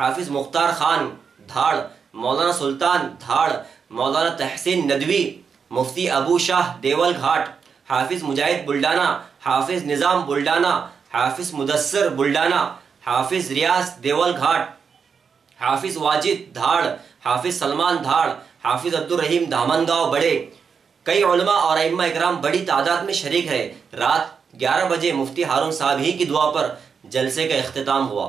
मुख्तार खान धाड़, मौलाना सुल्तान धाड़, मौलाना तहसीन नदवी, मुफ्ती अबू शाह देवल घाट, हाफिज मुजाहिद बुल्डाना, हाफिज निज़ाम बुल्डाना, हाफिज मुदस्सर बुल्डाना, हाफिज रियाज देवल घाट, हाफिज वाजिद धाड़, हाफिज सलमान धाड़, हाफिज अब्दुल रहीम दामनगांव बड़े। कई उलमा और अइम्मा इकराम बड़ी तादाद में शरीक है। रात 11 बजे मुफ्ती हारून साहब ही की दुआ पर जलसे का इख्तिताम हुआ।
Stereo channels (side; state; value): left; quieter; 6.1 dB